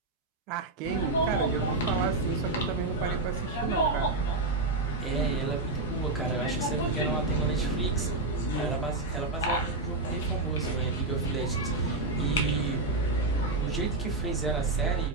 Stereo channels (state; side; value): quieter; left; 3.1 dB